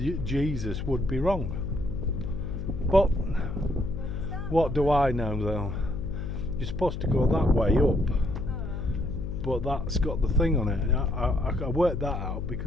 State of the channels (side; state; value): left; noise; hum, 5 dB below the sound